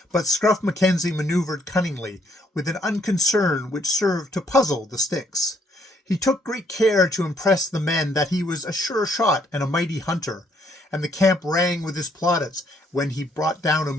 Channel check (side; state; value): both; normal; correlation 0.69